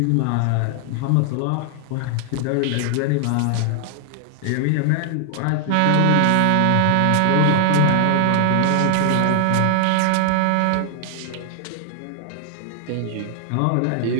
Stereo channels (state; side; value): different; both; correlation 0.00